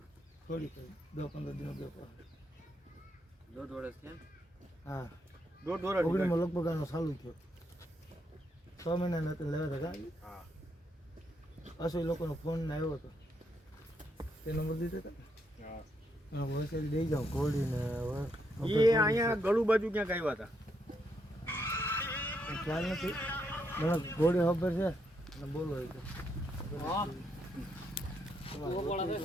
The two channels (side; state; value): both; normal; correlation 0.78